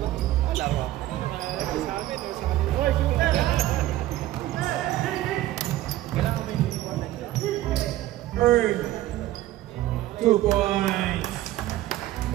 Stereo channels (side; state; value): left; quieter; 15.0 dB